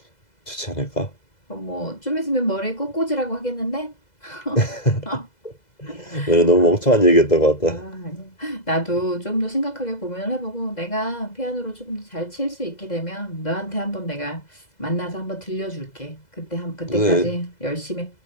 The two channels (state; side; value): late; right; 2.0 ms